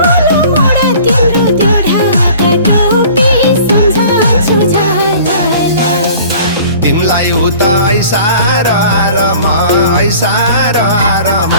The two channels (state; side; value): inverted; both; correlation -0.47